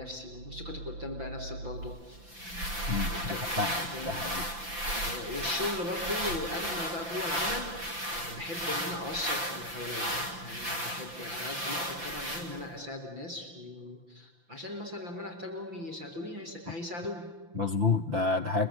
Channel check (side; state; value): left; late; 5.9 ms